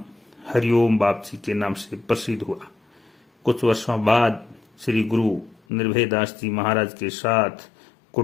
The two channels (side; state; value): right; drops out; at 5.6 s